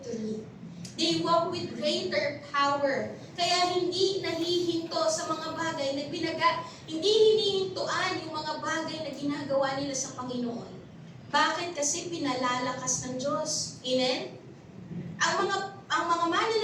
They walk with greater power. Kaya hindi nahihinto sa mga bagay na hindi hinihintuan yung mga bagay na ginagawa nila sa Panginoon. Bakit? Kasi pinalalakas ng Diyos. Amen? Ang mga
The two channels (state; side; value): identical; both; correlation 1.00